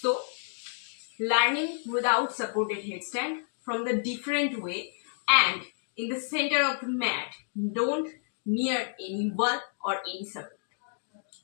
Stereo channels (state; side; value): silent; right; digital silence